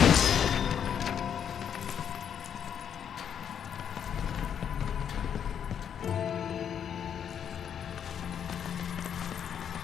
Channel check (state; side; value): quieter; right; 8.4 dB